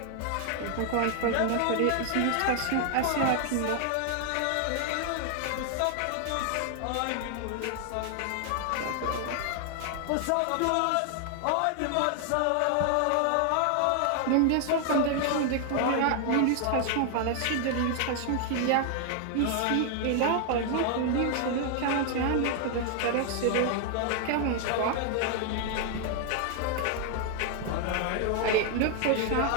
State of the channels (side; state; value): both; different; correlation 0.00